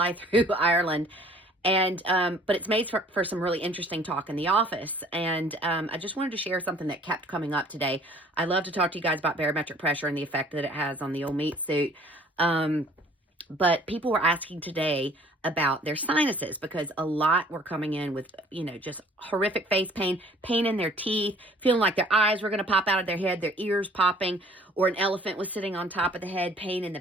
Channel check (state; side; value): normal; both; correlation 0.54